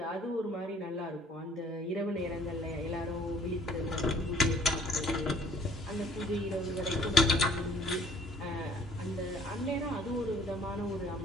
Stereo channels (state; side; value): normal; both; correlation 0.56